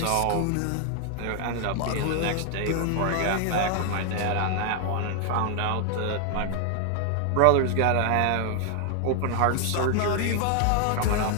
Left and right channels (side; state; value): both; different; correlation 0.00